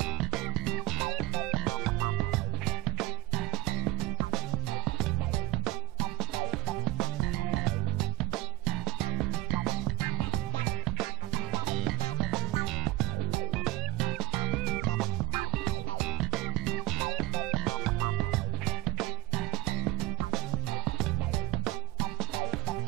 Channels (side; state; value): left; quieter; 20.2 dB